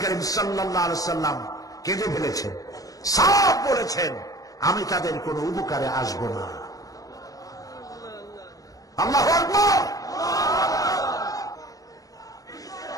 করিম সাল্লাল্লাহু আলাইহি সাল্লাম কেঁদে ফেলেছেন, সব বলেছেন আমি তাদের কোনো উপকারে আসব না। আল্লাহু আকবার।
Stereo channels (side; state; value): right; late; 0.17 ms